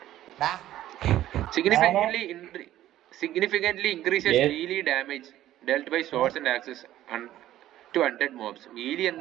ഡാ, significantly increases Yes. melee damage dealt by swords and axes to undead mobs. melee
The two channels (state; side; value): quieter; left; 13.4 dB